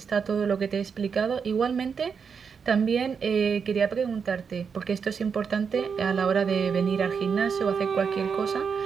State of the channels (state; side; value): quieter; left; 6.2 dB